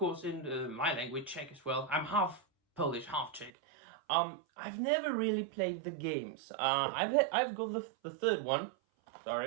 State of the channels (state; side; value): drops out; left; at 3.5 s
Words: in my language, Czech as well. I'm half Polish, half Czech. I've never really played the games. I've got the third one,